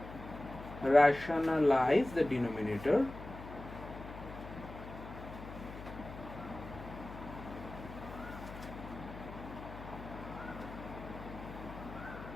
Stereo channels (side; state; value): left; noise; hum, 12 dB below the sound